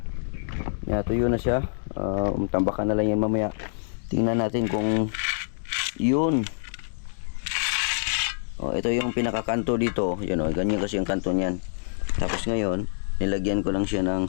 Tuyo na siya. Tambakan na lang yan mamaya. Tingnan natin kung yun. Ito yung pinakakanto dito. Yan, ganyan kasi yung kanto niyan. Tapos ngayon, nilagyan ko lang siya ng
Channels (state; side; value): silent; right; digital silence